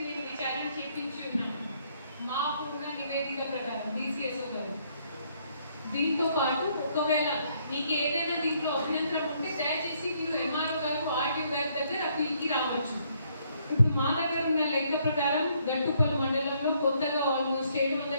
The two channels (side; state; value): both; inverted; correlation -0.69